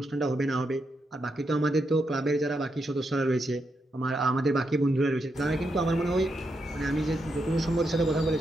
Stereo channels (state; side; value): normal; both; correlation 0.83